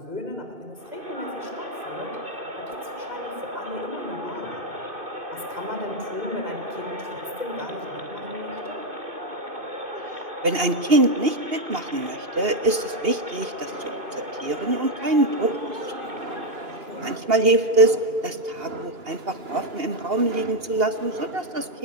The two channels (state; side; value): late; left; 2.8 ms